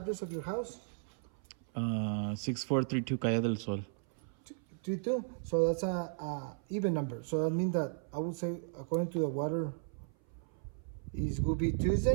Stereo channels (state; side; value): silent; left; 54 dB below the other